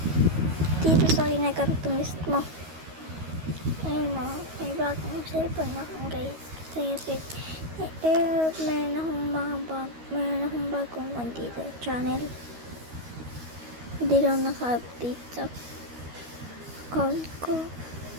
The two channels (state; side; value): late; left; 13 ms